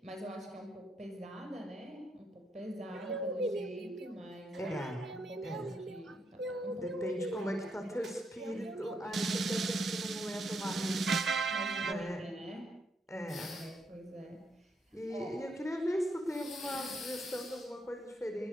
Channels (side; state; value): both; normal; correlation 0.78